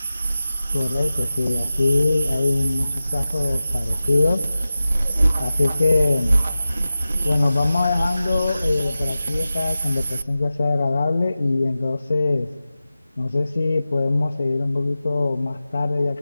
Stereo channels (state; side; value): inverted; both; correlation -0.94